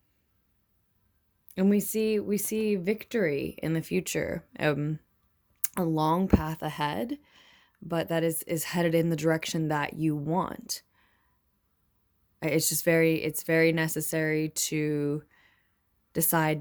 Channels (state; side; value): identical; both; correlation 1.00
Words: And we see victory in the future, a long path ahead, but that is headed in the direction that you want. It's very necessary to